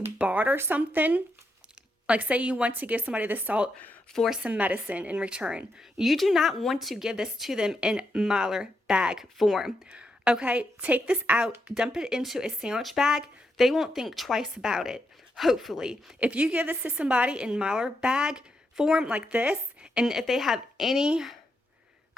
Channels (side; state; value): both; normal; correlation 0.82